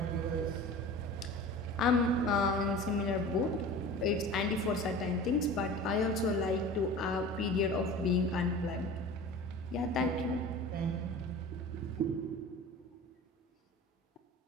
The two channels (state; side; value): normal; both; correlation 0.38